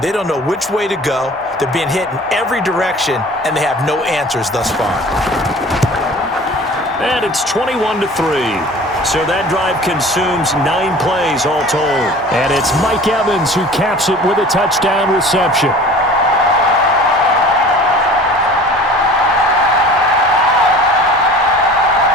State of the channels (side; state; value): both; normal; correlation 0.43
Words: They don't know which way to go. They're being hit in every direction, and they have no answers thus far. And it's 21-3. So that drive consumes 9 plays all told. And it's Mike Evans who caps it with a touchdown reception.